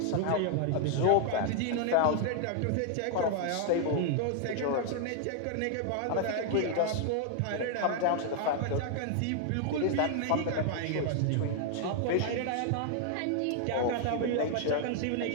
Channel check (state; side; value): different; both; correlation 0.00